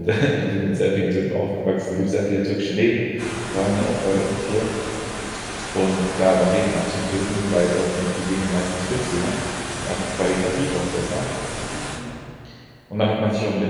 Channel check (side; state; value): both; identical; correlation 1.00